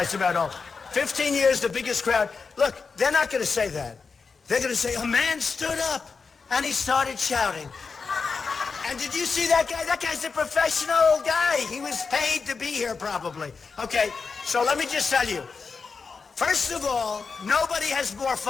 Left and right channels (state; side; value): quieter; right; 4.9 dB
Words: about old. 15 years, the biggest crowd. Look, they're not going to say that. They're going to say, a man stood up, and he started shouting. And did you see that guy? That guy's a professional guy. He was paid to be here, probably. Okay, so let me just tell you. First of all, nobody has more